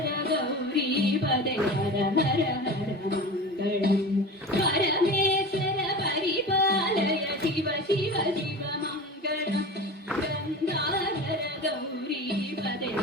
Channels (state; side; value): normal; both; correlation 0.32